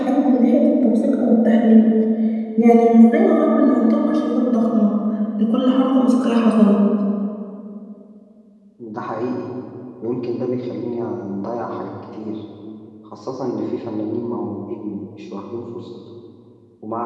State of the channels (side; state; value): both; identical; correlation 1.00